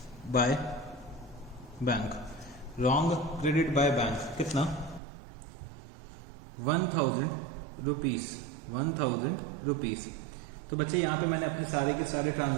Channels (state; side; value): drops out; left; at 5.0 s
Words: by bank, wrong credit by bank, कितना, 1000 रुपीज़। तो बच्चे यहाँ पे मैंने अपने सारे के सारे